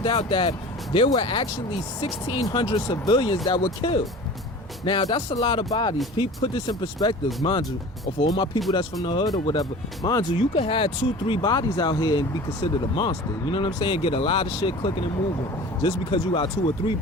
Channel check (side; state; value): both; normal; correlation 0.39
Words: out that there were actually 1,600 civilians that were killed. Now, that's a lot of bodies. Put this in perspective, mind you, or for all my people that's from the hood or whatever, mind you, you could have 2-3 bodies out here and be considered a monster. You know what I'm saying? Get a lot of shit clicking and moving just because you got 2 or 3